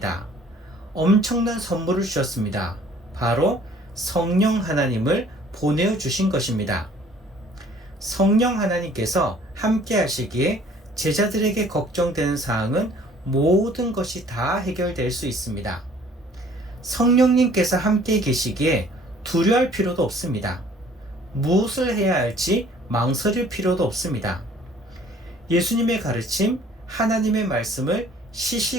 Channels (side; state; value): both; normal; correlation 0.55